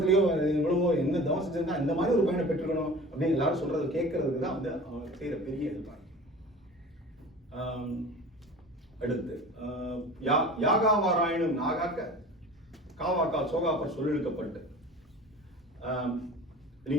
எவ்வளவோ என்ன தவம் செஞ்சிருந்தா இந்த மாதிரி ஒரு பையனை பெற்றுக்கணும் அப்படின்னு எல்லாரும் சொல்றது கேட்கறதுக்கு தான் வந்து அவங்க செய்யற பெரிய ஹெல்ப். அடுத்து யாகாவாராயனும் நாகாக்க காவாக்கால் சோகாப்பர் சொல்லிழுக்கப்பட்டு.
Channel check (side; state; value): both; normal; correlation 0.40